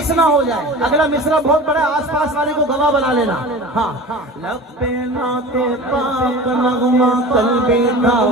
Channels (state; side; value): normal; both; correlation 0.36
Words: نہ ہو جائے اگلا مصرع بہت بڑا آس پاس والے کو گواہ بنا لینا ہاں لب پہ نعت پاک نغمہ قلبی